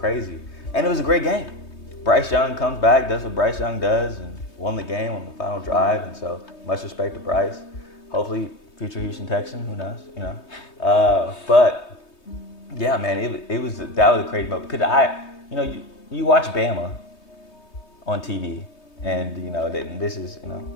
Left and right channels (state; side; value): late; right; 3.2 ms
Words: And it was a great game. Bryce Young comes back, does what Bryce Young does, and won the game on the final drive. And so much respect to Bryce. Hopefully, future Houston Texan. Who knows? But yeah, man, that was a crazy moment because you watch Bama on TV, and this is